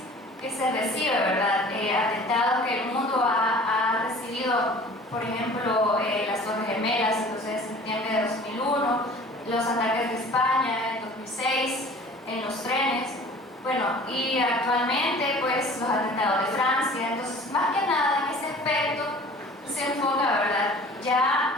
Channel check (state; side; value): normal; both; correlation 0.45